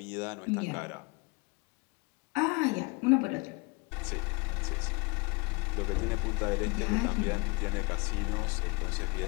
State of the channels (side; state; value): right; quieter; 27.6 dB